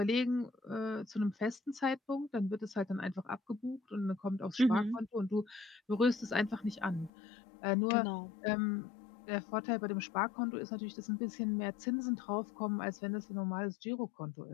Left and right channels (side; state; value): right; drops out; at 7.1 s